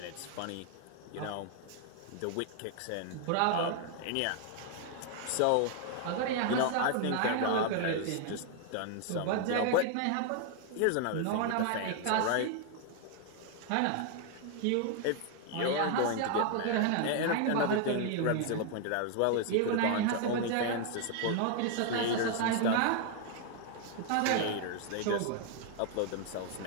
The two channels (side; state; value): both; different; correlation 0.00